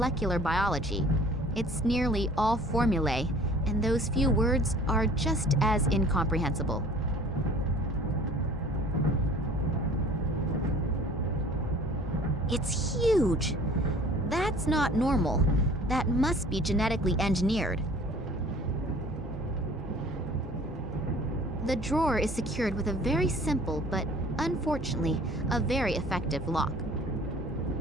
biology. It's nearly all formulae, and those few words are just as incomprehensible. It's huge! That's not normal. That must be genetically engineered. The drawer is secured with a very simple, but unfortunately, a very effective lock.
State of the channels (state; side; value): normal; both; correlation 0.50